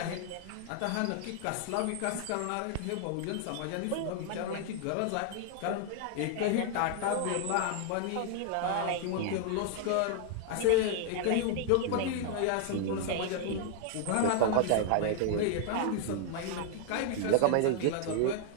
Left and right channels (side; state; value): both; different; correlation 0.00